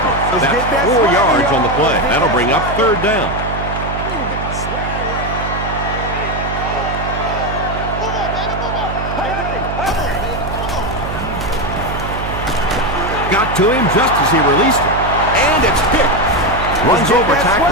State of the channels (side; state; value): right; noise; hum, 6 dB below the sound